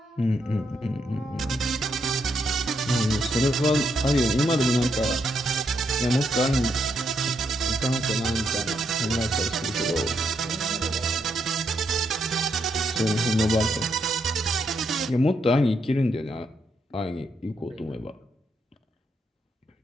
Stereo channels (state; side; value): normal; both; correlation 0.79